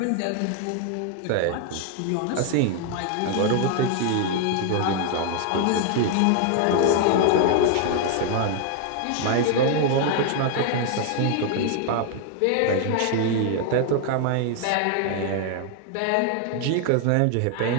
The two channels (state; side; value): different; both; correlation 0.00